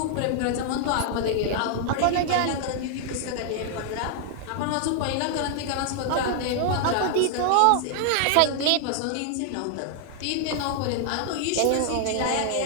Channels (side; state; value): both; different; correlation 0.00